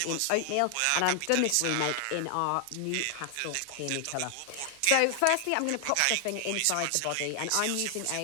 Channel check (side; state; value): both; different; correlation 0.00